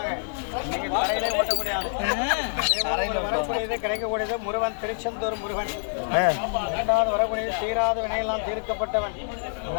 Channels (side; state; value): right; silent; digital silence